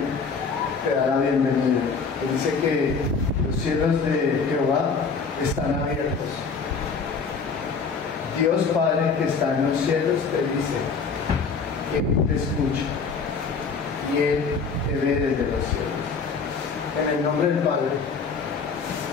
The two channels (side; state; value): right; quieter; 5.1 dB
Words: te da la bienvenida. Él dice que los cielos de Jehová están abiertos. Dios Padre que está en los cielos te dice que Él te escucha y Él te ve desde los cielos. En el nombre del Padre,